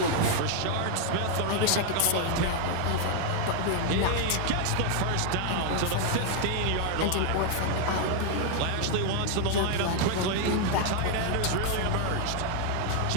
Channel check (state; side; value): different; both; correlation 0.00